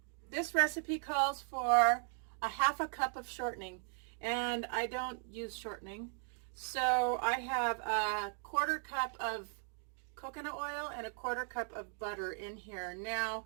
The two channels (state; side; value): silent; left; 53 dB below the other